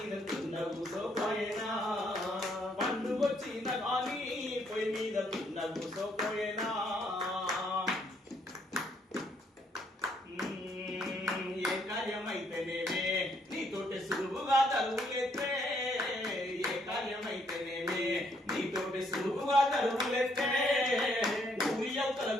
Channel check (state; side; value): normal; both; correlation 0.70